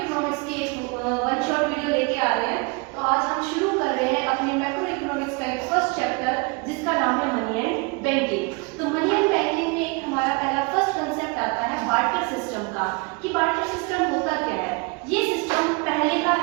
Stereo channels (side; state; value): left; quieter; 29.5 dB